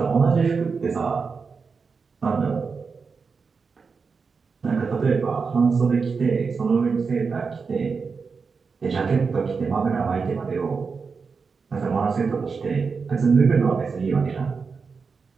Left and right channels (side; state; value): left; quieter; 5.1 dB